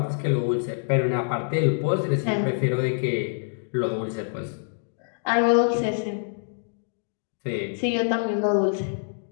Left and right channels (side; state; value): right; silent; digital silence